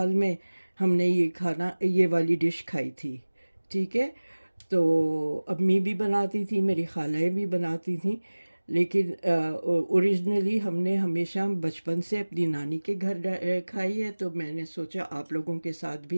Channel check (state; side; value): inverted; both; correlation -1.00